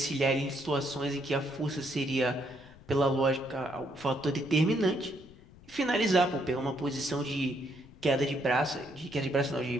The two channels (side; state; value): left; noise; rumble, 22 dB below the sound